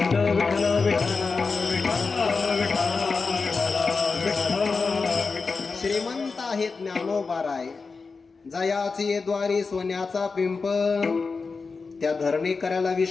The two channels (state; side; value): quieter; right; 4.5 dB